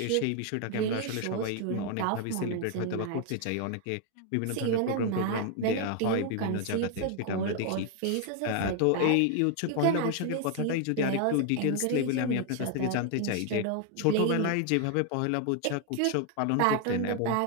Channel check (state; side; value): different; both; correlation 0.00